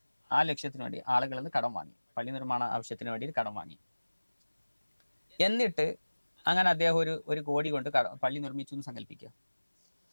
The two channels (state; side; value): inverted; both; correlation -1.00